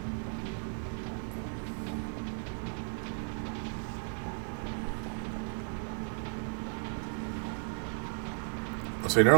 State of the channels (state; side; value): silent; left; 55 dB below the other